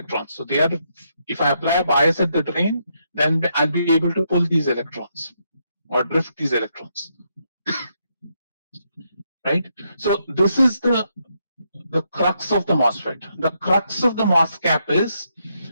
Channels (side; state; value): both; inverted; correlation -0.78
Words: So they are, if I apply a bias at the drain, then I'll be able to pull these electrons or drift these electrons. Right? So this is the crux of the MOSFET. The crux of the MOS cap is